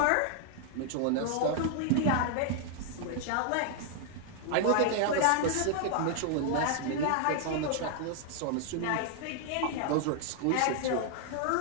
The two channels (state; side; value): different; both; correlation 0.00